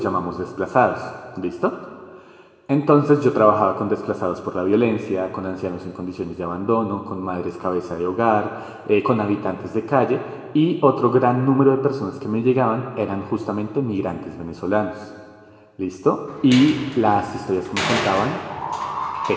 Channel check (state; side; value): identical; both; correlation 1.00